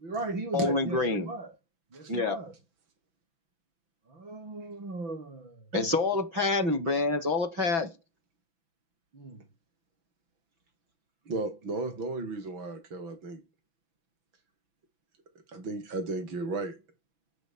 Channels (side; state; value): left; late; 6.0 ms